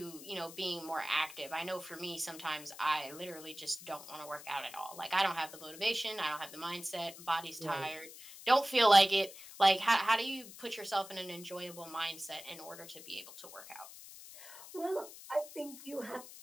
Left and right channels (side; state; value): left; noise; hiss, 15 dB below the sound